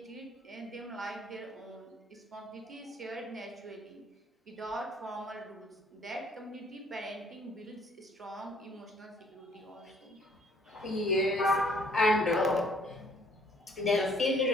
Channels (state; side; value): normal; both; correlation 0.61